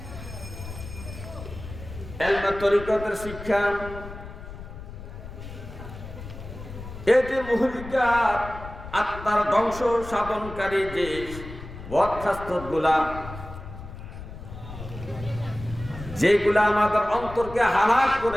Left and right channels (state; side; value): noise; left; rumble, 12 dB below the sound